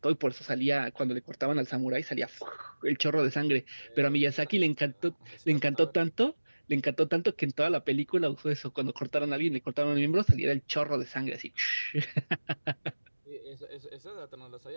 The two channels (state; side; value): inverted; both; correlation -1.00